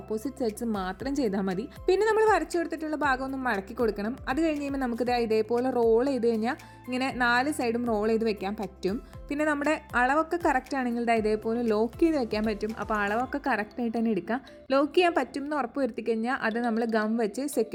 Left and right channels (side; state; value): both; identical; correlation 1.00